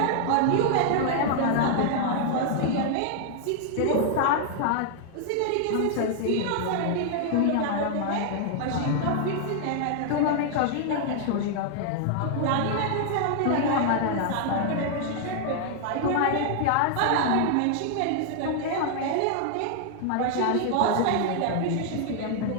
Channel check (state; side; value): different; both; correlation 0.00